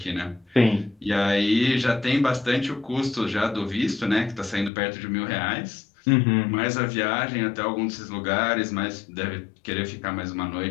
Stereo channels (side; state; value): right; drops out; at 4.7 s